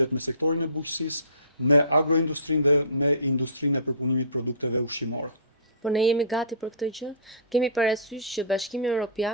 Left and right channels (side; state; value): both; inverted; correlation -0.37